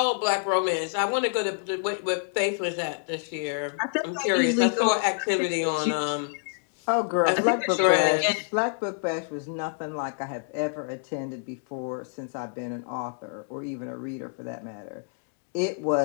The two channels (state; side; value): silent; right; digital silence